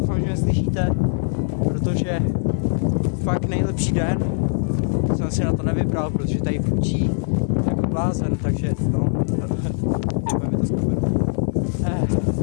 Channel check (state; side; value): silent; right; 64 dB below the other